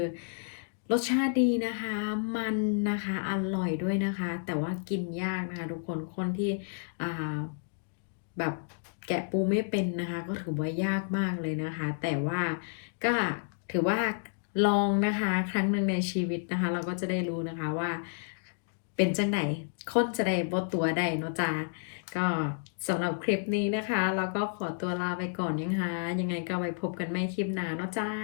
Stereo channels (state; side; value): silent; right; digital silence